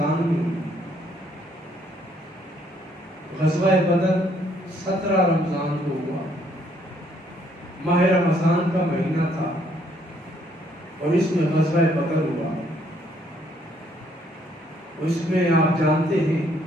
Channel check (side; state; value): both; normal; correlation 0.68